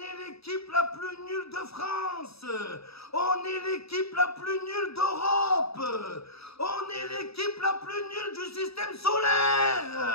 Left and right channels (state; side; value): late; right; 0.77 ms